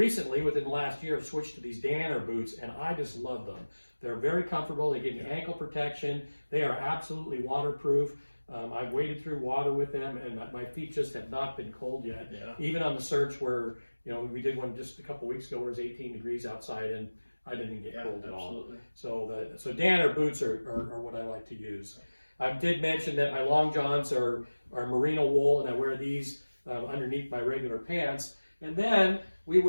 within the last year, have switched to these Gator boots, and I just love them. They're very comfortable. They give me ankle protection. They are absolutely waterproof. I've waded through water with them, and my feet just have not been cold yet. Yeah. Even on the search where, we did one just a couple weeks ago where it was 18 degrees outside, and I didn't get cold at all. So Danner boots are what I like to use. I did mention that my long johns are merino wool, and I wear these underneath my regular pants. And then we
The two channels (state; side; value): inverted; both; correlation -1.00